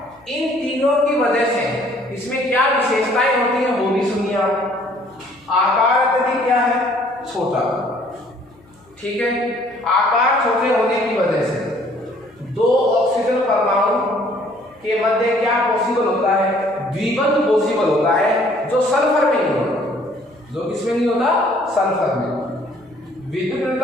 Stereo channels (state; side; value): noise; left; hum, 30 dB below the sound